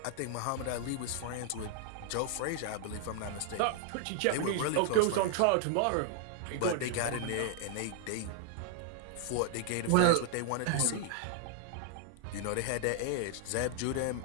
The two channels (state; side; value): different; both; correlation 0.00